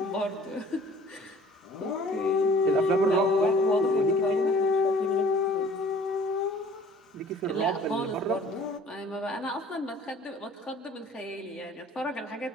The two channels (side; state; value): both; normal; correlation 0.51